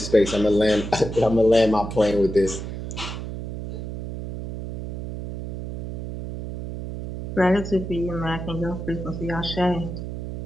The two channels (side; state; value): right; noise; hum, 6 dB below the sound